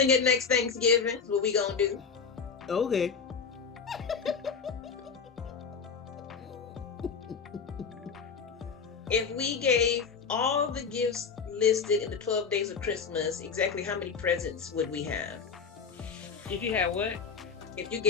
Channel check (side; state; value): right; quieter; 5.8 dB